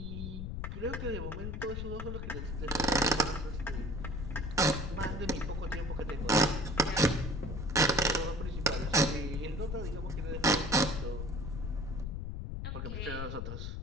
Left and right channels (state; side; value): noise; left; rumble, 4 dB below the sound